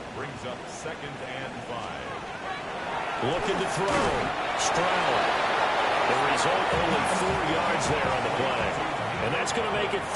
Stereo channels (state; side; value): identical; both; correlation 1.00